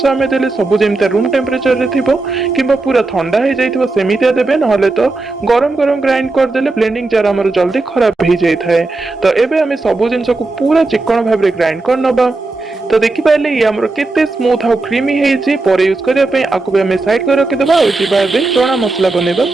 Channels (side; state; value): left; quieter; 3.3 dB